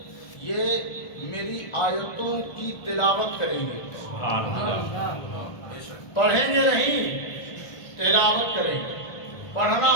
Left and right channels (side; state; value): right; late; 1.4 ms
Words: میری آیتوں کی تلاوت کریں گے. پڑھیں گے نہیں، تلاوت کریں گے. پڑھنا